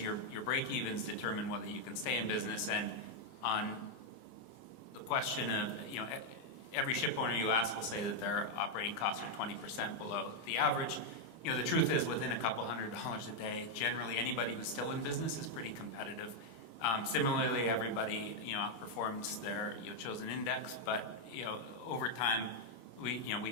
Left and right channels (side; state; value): right; late; 24 ms